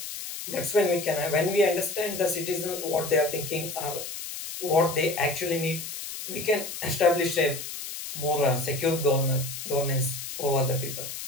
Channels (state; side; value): noise; left; hiss, 8 dB below the sound